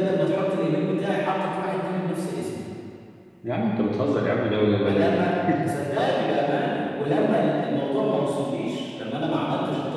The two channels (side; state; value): both; identical; correlation 1.00